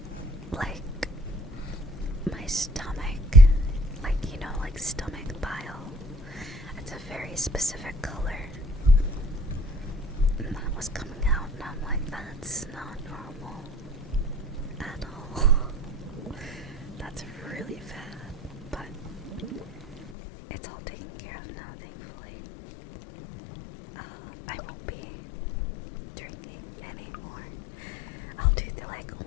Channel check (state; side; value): drops out; right; at 20.1 s